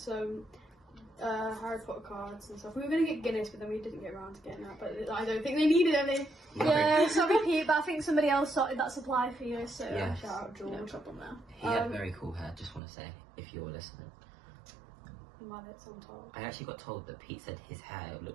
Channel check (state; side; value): drops out; left; at 12.8 s